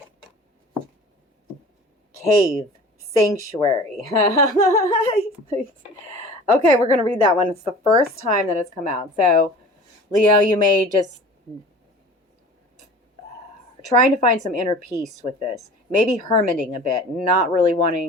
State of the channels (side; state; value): both; normal; correlation 0.42